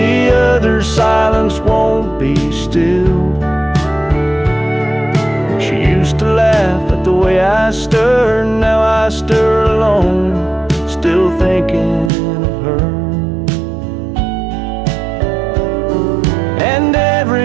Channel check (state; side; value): drops out; left; at 12.1 s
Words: other silence won't be still. She used to laugh at the way I stir, now I stir alone, still thinking of her. And